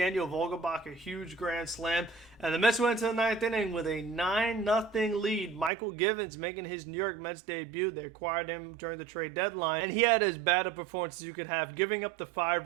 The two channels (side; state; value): left; drops out; at 5.7 s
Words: Vogelbach, a huge grand slam. And the Mets went to the 9th inning with a 9-0 lead. Michael Gibbons making his New York Mets debut. They acquired him during the trade deadline. And he had as bad a performance as you could have, giving up the